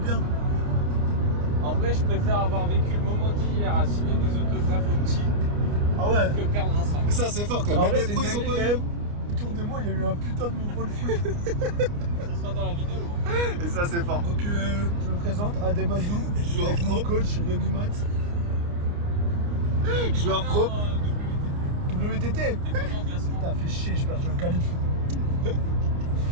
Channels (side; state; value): left; late; 29 ms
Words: bien. En vrai je préfère avoir vécu le moment d'hier à signer des autographes aux petits Ah ouais. que perdre un 5. Mais ça c'est fort quand même. Ah Même les pros ils ont pas eu. Autour de moi il y a eu un putain de mouvement de foot. Ça sera dans la vidéo. Et ça c'est fort. Donc je me présente Adem Azou, avec mon coach Rémi Mat. Joueur pro. WTT. T'es comment en classement? Putain, fait chier, j'ai perdu un qualif.